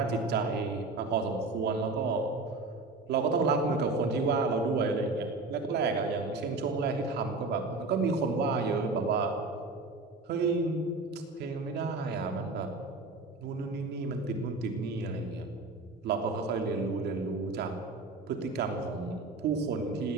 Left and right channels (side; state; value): left; quieter; 3.5 dB